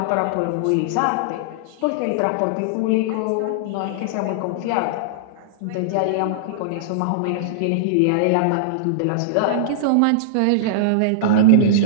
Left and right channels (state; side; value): different; both; correlation -0.02